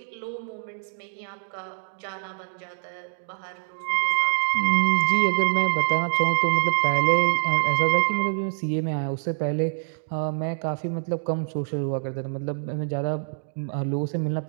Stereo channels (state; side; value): silent; left; digital silence